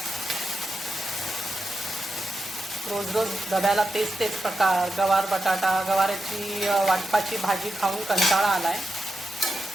रोज रोज डब्याला तेच प्रकार, गवार बटाटा, गवाराची वाटपाची भाजी खाऊन कंटाळा आला आहे।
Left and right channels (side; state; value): both; normal; correlation 0.88